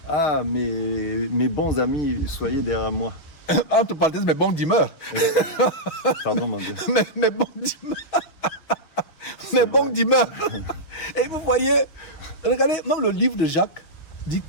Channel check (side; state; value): right; late; 6.2 ms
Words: « Ah, mes bons amis, soyez derrière moi. » Entre parenthèses, mes bons dîmeurs. Pardon, mon Dieu. Mes bons dîmeurs. Mes bons dîmeurs. Et vous voyez, regardez, même le livre de Jacques dit